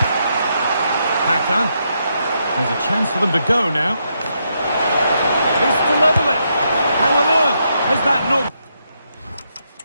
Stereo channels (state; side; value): inverted; both; correlation -0.80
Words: Kaka. There's a chance for them to go now. This to level it. How on earth has that not...